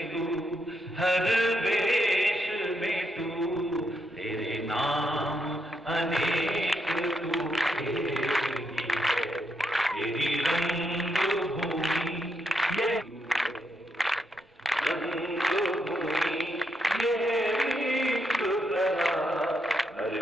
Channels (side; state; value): both; normal; correlation 0.80